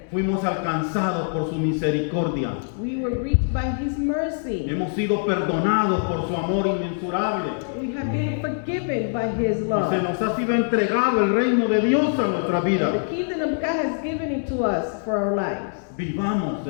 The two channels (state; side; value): silent; right; digital silence